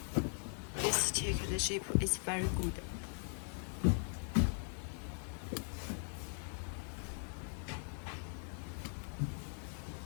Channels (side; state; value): right; silent; 51 dB below the other